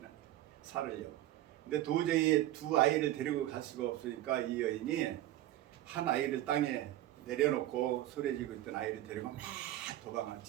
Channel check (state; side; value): quieter; left; 14.5 dB